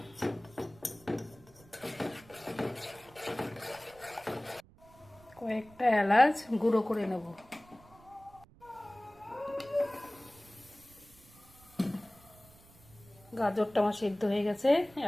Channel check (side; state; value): right; noise; rumble, 25 dB below the sound